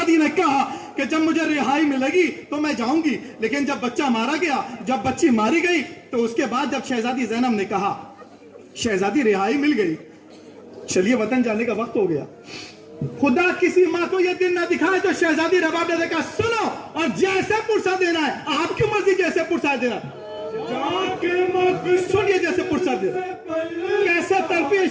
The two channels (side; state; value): both; identical; correlation 1.00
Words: ने कहा कि जब मुझे रिहाई मिलेगी तो मैं जाऊंगी, लेकिन जब बच्चा मारा गया, जब बच्ची मारी गई, तो उसके बाद जब शहजादी ज़ैनब ने कहा, शहजादी रिहाई मिल गई, चलिए वतन जाने का वक्त हो गया। खुदा किसी माँ को यह दिन ना दिखाए तो शहजादी रबाब ने देखा, सुनो और जैसे पुरसा देना है, आपकी मर्जी, जैसे पुरसा देना, सुनिए जैसे पुरसा देना। कैसे तड़पी है